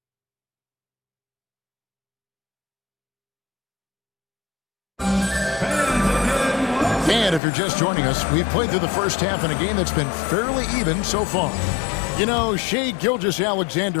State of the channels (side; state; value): right; drops out; at 7.4 s